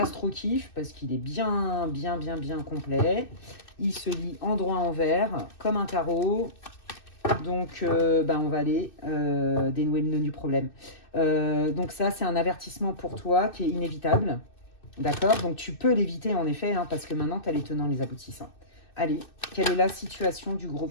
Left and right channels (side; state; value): right; late; 2.6 ms